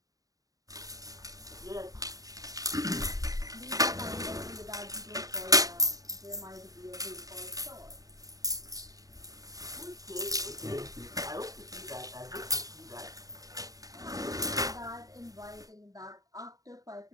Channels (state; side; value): late; left; 0.17 ms